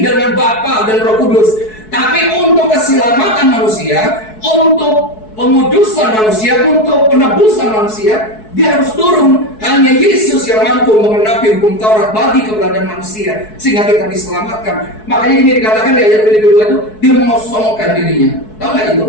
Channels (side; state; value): right; late; 4.6 ms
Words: dengan Bapa dan Roh Kudus. Tapi untuk keselamatan manusia, untuk pengudusan manusia, untuk penebusan manusia, dia harus turun. Hanya Yesus yang mampu mengenapi hukum Taurat bagi keberadaan manusia, sehingga kita diselamatkan. Makanya ini dikatakan di ayat kedua itu, dia mengosongkan dirinya. Tahu nggak itu